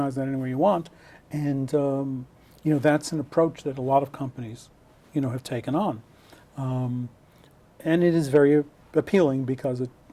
that any way you want. And that's an approach that a lot of companies have taken on. And it is very appealing because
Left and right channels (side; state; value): both; identical; correlation 1.00